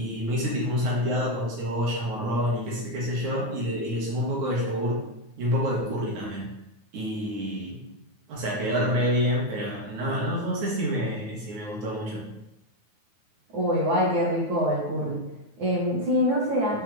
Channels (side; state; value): left; late; 9.4 ms